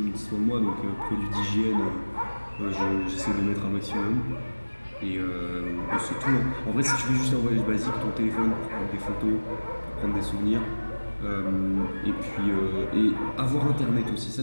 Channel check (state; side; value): inverted; both; correlation -1.00